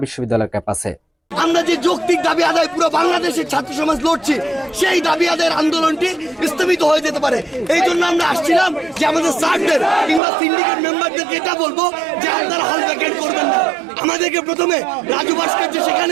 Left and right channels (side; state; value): left; drops out; at 10.2 s